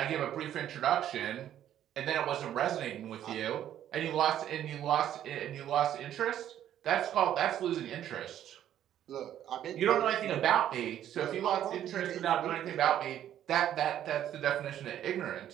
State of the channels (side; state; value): left; quieter; 11.1 dB